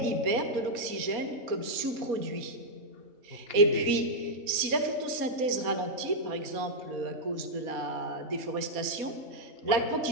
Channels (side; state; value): left; late; 4.2 ms